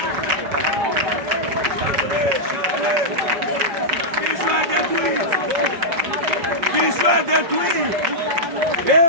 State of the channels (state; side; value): late; left; 5.1 ms